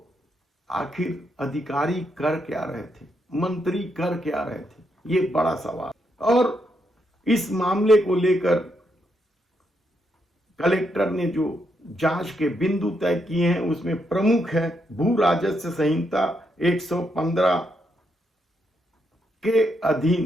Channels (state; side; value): normal; both; correlation 0.79